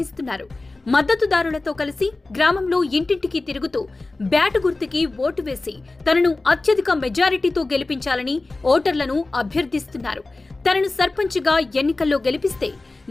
మద్దతుదారులతో కలిసి గ్రామంలో ఇంటింటికి తిరుగుతూ బ్యాట్ గుర్తుకి ఓటు వేసి తనను అత్యధిక మెజారిటీతో గెలిపించాలని ఓటర్లను అభ్యర్థిస్తున్నారు. తనను సర్పంచ్గా ఎన్నికల్లో గెలిపిస్తే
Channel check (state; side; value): quieter; right; 3.2 dB